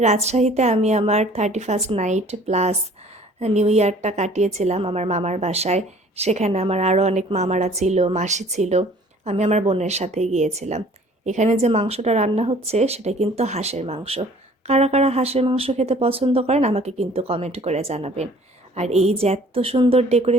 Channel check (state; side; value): normal; both; correlation 0.53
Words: আমি আমার 31st নাইট প্লাস নিউ ইয়ারটা কাটিয়েছিলাম আমার মামার বাসায়। সেখানে আমার আরও অনেক মামারা ছিল, মাসি ছিল। আমি আমার বোনের সাথে গিয়েছিলাম। এখানে যে মাংসটা রান্না হচ্ছে সেটা কিন্তু হাঁসের মাংস। কারা কারা হাঁসের মাংস খেতে পছন্দ করেন আমাকে কিন্তু কমেন্ট করে জানাবেন। আর এই যে এত সুন্দর